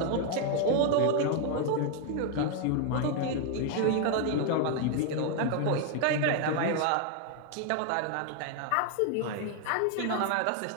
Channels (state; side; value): different; both; correlation 0.00